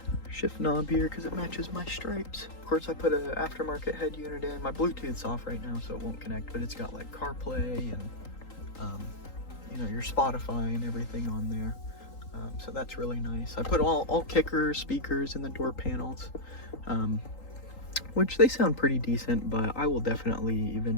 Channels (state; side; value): late; right; 3.8 ms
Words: knob here because it matches my stripes. Of course, I put an aftermarket head unit in. My Bluetooth's off right now, so it won't connect, but it's got like CarPlay and you know, your Spotify and everything on there. So that's really nice. I put all kickers, speakers in the door panels, which they sound pretty decent, but I will definitely